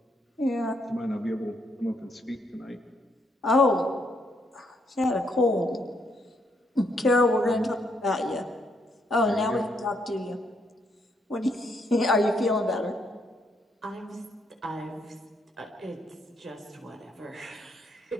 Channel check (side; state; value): both; normal; correlation 0.74